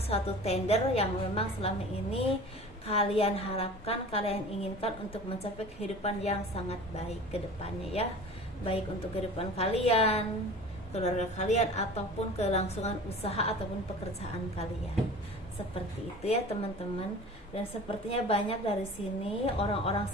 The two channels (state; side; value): normal; both; correlation 0.40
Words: suatu tender yang memang selama ini kalian harapkan, kalian inginkan untuk mencapai kehidupan yang sangat baik ke depannya ya. Baik untuk kehidupan kalian, keluarga kalian, ataupun kelangsungan usaha ataupun pekerjaan kalian. Seperti itu ya teman-teman. Dan sepertinya banyak dari sini orang-orang